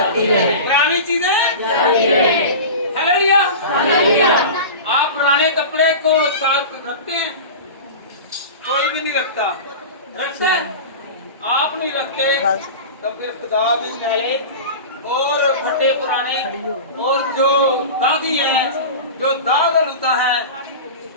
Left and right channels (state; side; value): inverted; both; correlation -0.31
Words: है। पुरानी चीजें। हालेलुया। आप पुराने कपड़े को साथ रखते हैं? कोई भी नहीं रखता। रखते हैं? आप नहीं रखते तो फिर खुदा भी मैले और फटे पुराने और जो दागी हैं, जो दाग लुता है,